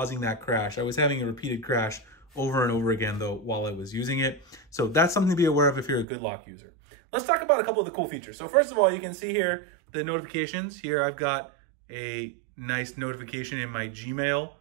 that crash. I was having a repeated crash over and over again though while I was using it. So that's something to be aware of if you're a Good Lock user. Let's talk about a couple of the cool features. So first of all, you can see here the notifications. Here I've got a nice notification in my Gmail.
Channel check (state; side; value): drops out; left; at 6.1 s